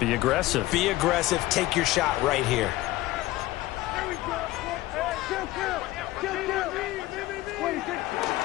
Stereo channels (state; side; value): quieter; right; 17.2 dB